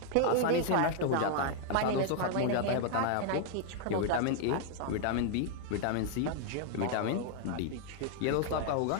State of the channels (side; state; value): both; different; correlation 0.00